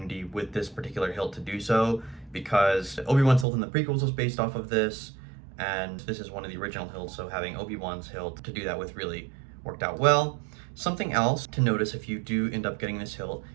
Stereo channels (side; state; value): left; drops out; at 3.5 s